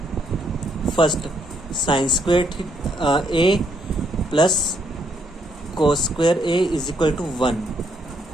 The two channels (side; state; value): both; normal; correlation 0.73